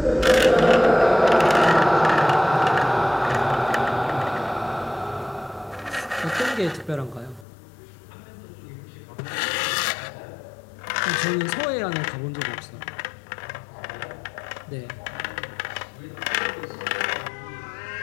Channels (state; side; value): drops out; right; at 7.5 s